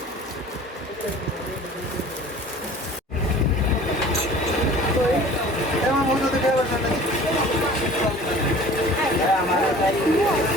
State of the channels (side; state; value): both; normal; correlation 0.46